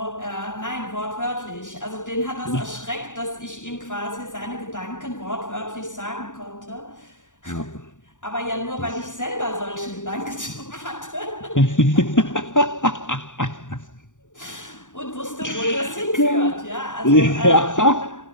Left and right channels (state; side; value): late; right; 0.86 ms